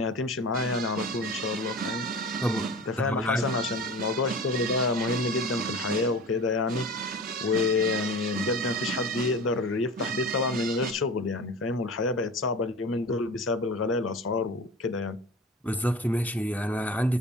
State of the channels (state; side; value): normal; both; correlation 0.35